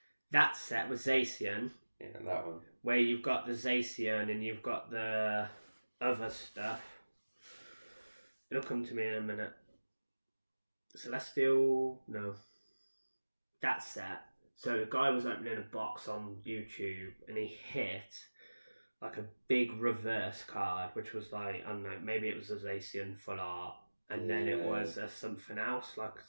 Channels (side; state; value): both; inverted; correlation -1.00